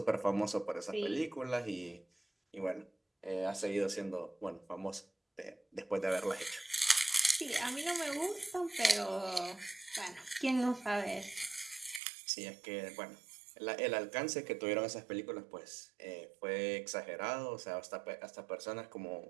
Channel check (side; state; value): left; drops out; at 12.0 s